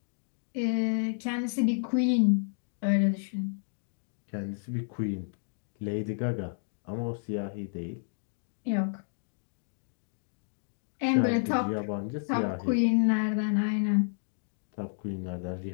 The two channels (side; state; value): right; silent; digital silence